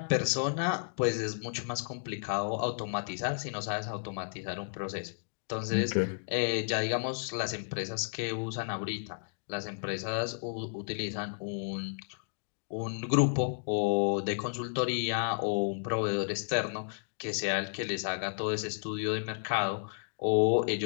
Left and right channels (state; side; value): silent; right; digital silence